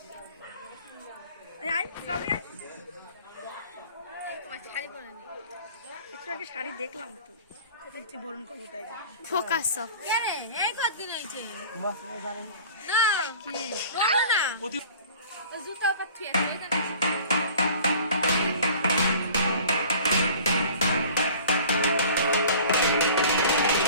একটু আগে শাড়ি দেখলাম তো, বরণ করবো তাই ফোকাস সব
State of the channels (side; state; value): both; inverted; correlation -0.45